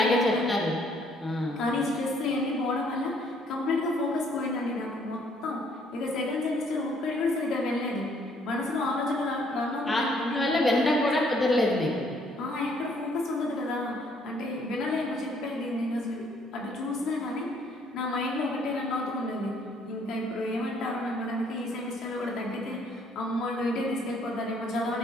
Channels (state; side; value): normal; both; correlation 0.65